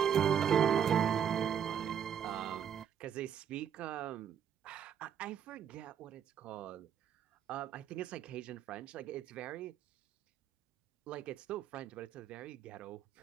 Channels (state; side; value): quieter; left; 8.6 dB